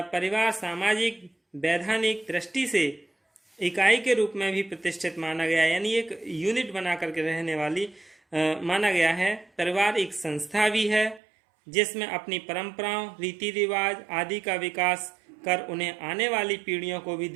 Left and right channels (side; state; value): left; drops out; at 11.2 s